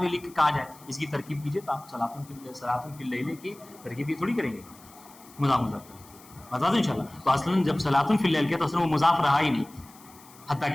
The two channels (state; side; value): noise; left; hiss, 23 dB below the sound